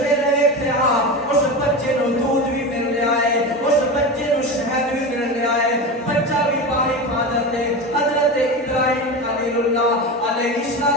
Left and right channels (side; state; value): both; normal; correlation 0.24